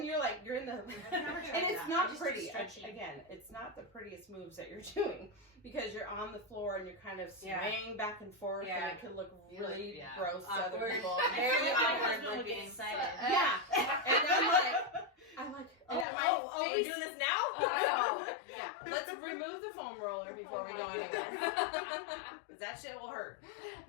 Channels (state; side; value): drops out; right; at 16.1 s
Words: you're in the and it's not pretty. Again, it's not the prettiest moves that you're doing because you're on the floor and you're kind of swaying back and forth, and it can look really gross to other people. Very awkward would looking. get excited. Yeah, and I'm like, we're doing this now? Yeah, let's remove the foam roller before we go anywhere. That shit will hurt.